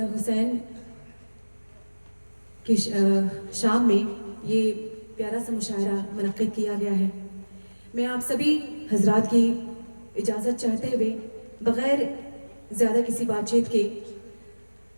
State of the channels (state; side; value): inverted; both; correlation -1.00